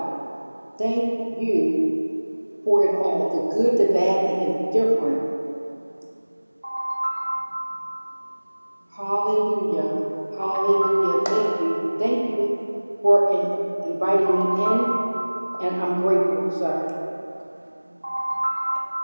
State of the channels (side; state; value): both; inverted; correlation -1.00